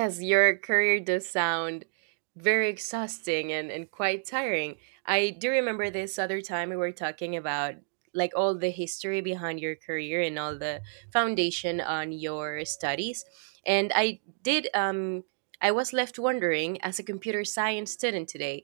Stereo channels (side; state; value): left; silent; digital silence